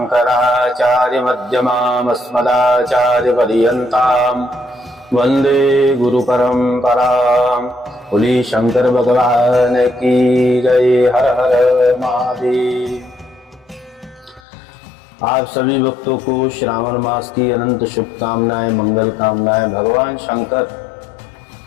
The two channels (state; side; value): drops out; right; at 14.4 s